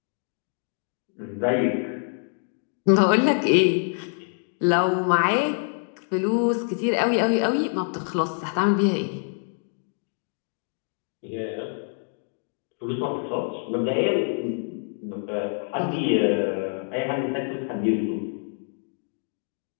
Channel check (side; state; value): right; silent; 61 dB below the other